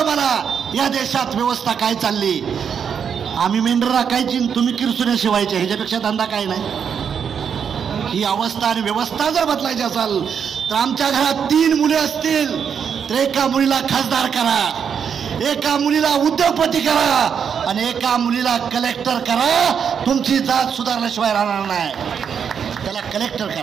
मला या देशात व्यवस्था काय चालली. आम्ही मेंढर राखायची, तुम्ही किरसुने शिवायचे, ह्याच्यापेक्षा धंदा काय नाही. ही अवस्था आणि व्यवस्था जर बदलायची असेल तर आमच्या घरात 3 मुले असतील तर एका मुलीला खासदार करा, एका मुलीला उद्योगपती करा आणि एका मुलीला कलेक्टर करा. तुमची जात सुधारल्याशिवाय राहणार नाही. त्याला कलेक्टर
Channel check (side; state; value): left; quieter; 7.3 dB